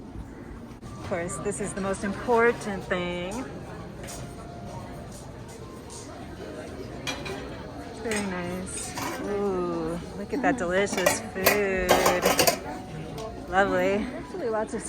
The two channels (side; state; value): both; identical; correlation 1.00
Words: Of course, this is the most important thing. Very nice. Ooh, look at that delicious food. Lovely. Actually, lots of